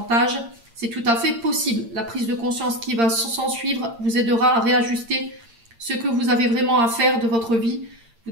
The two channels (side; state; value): left; late; 8.7 ms